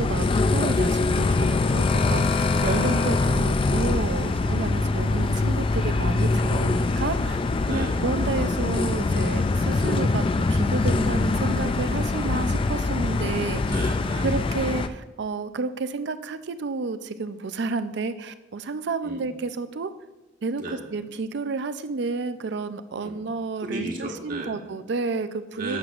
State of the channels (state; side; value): normal; both; correlation 0.62